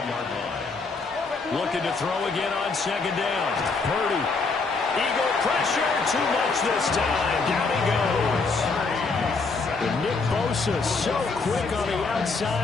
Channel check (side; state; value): right; quieter; 4.2 dB